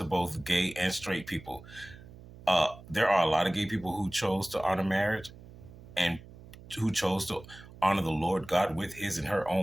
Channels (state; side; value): noise; right; hum, 19 dB below the sound